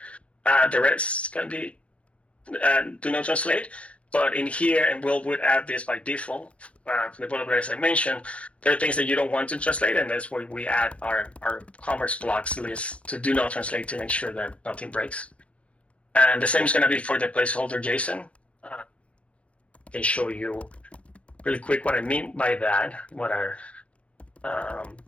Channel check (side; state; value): right; late; 0.062 ms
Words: The rest can be do not translate. But in here, and would add this by default from the boilerplate as I mentioned, there are things that you don't want to translate, and that's why we add our commerce blocks list to do not translate to make sure that nothing breaks. And the same is going to be for the placeholder JSON. I can show you really quick what I mean by that, what our